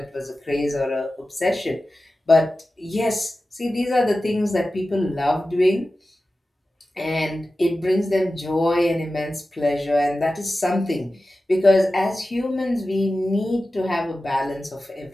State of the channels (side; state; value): both; normal; correlation 0.94